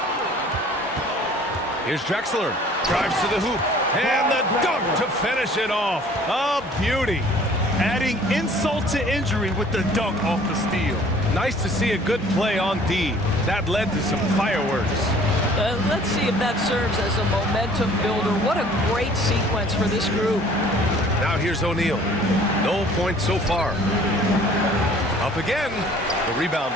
Here's Drexler. Drives to the hoop. And the dunk to finish it off. A beauty. Adding insult to injury with the dunk off the steal. Nice to see a good play on D. That led to some fireworks. Let's see if that serves as a momentum builder. What a great sequence for this group. Now here's O'Neal. No points so far. Up again. The rebound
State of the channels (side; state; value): both; normal; correlation 0.52